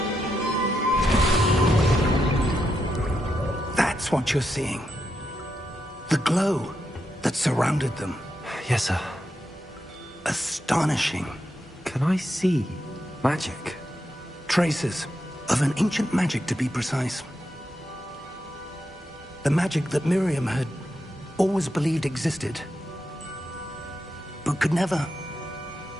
That's what you're seeing. The glow that surrounded them. Yes, sir. Astonishing. Can I see magic? Traces of an ancient magic, to be precise. The magic that Miriam had always believed existed, but could never.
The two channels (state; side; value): normal; both; correlation 0.84